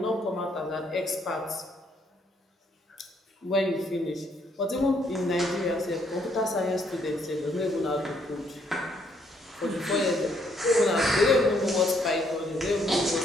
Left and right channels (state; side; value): normal; both; correlation 0.70